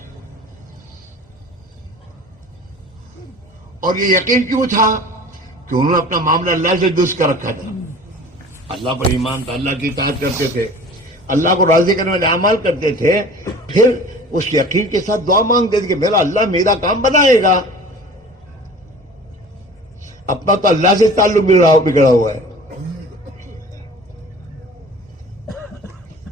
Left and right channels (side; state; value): both; normal; correlation 0.43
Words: اور یہ یقین کیوں تھا؟ کہ انہوں نے اپنا معاملہ اللہ سے درست کر رکھا تھا. اللہ پر ایمان تھا, اللہ کی اطاعت کرتے تھے, اللہ کو راضی کرنے والے اعمال کرتے تھے. پھر اس یقین کے ساتھ دعا مانگتے تھے کہ میرا اللہ میرا کام بنائے گا. اپنا تو اللہ سے تعلق بگڑا ہوا ہے.